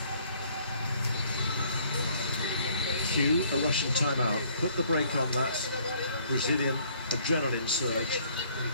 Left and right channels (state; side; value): inverted; both; correlation -0.61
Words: Cue a Russian timeout. Put the brake on that Brazilian adrenaline surge.